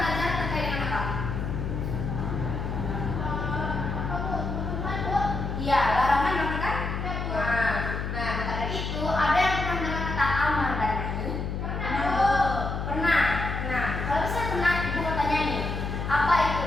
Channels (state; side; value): noise; left; hum, 3 dB below the sound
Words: Iya, larangan berarti kan? Nah, maka dari itu ada yang pernah mendengar kata amar dan nahi? Pernah. Nah, kalau misalnya pernah, ibu mau tanya nih, apa